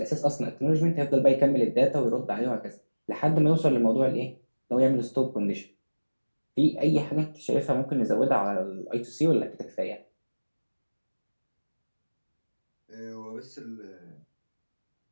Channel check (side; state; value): both; inverted; correlation -1.00